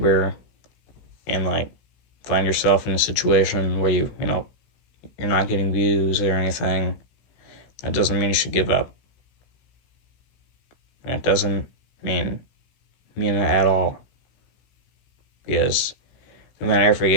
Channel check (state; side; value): late; right; 16 ms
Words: and find yourself in a situation where you're not getting views or anything, that doesn't mean you should give up. That doesn't mean it at all. Because no matter if you